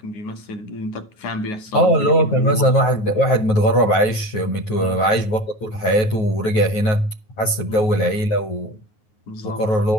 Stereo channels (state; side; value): late; right; 9.4 ms